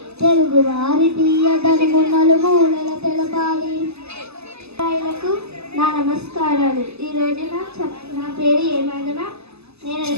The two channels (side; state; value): left; late; 0.79 ms